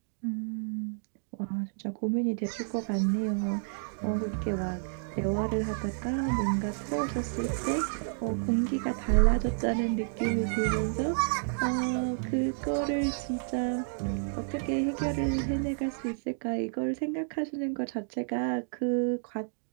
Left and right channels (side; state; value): left; silent; digital silence